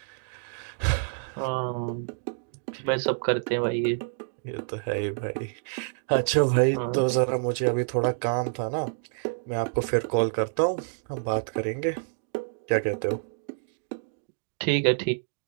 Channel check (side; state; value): left; silent; digital silence